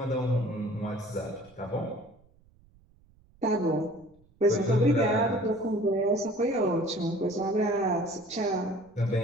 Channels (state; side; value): noise; right; rumble, 30 dB below the sound